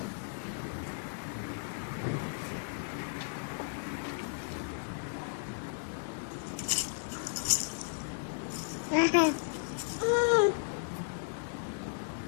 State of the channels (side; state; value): right; silent; digital silence